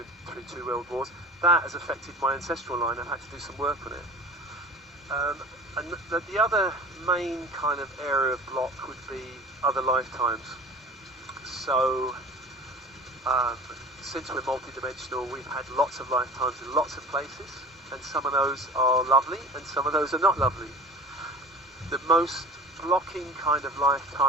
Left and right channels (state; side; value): normal; both; correlation 0.40